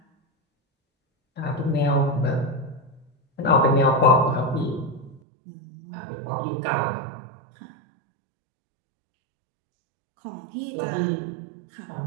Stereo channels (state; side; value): drops out; left; at 5.2 s